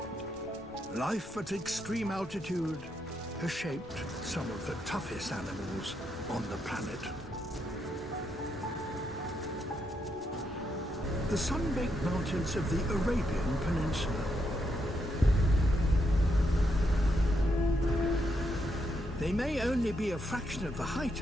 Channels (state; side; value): normal; both; correlation 0.80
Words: Life at extreme altitude has shaped some of the toughest animals on the planet. The sun-baked mountains of the Arabian Peninsula. They may only be a fraction of the height